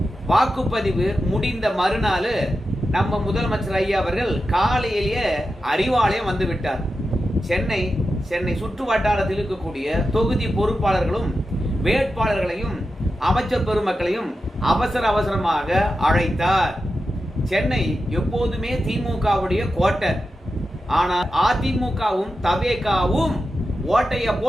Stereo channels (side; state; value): both; normal; correlation 0.91